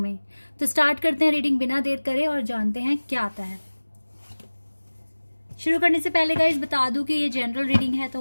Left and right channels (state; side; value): inverted; both; correlation -1.00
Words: तो स्टार्ट करते हैं रीडिंग बिना देर करे और जानते हैं क्या आता है। शुरू करने से पहले गाइस बता दूं कि ये जनरल रीडिंग है,